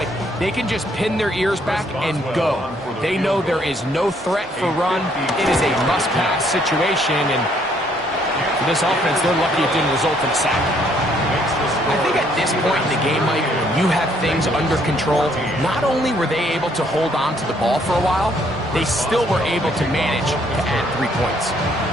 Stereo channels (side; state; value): both; normal; correlation 0.67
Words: They can just pin their ears back and go. They know there is no threat for run. It is a must-pass situation, and for this offense, they're lucky it didn't result in a sack. I think at this point in the game, Mike, when you have things under control, not only were they able to hold on to the ball for a while, they still were able to manage to add 3 points.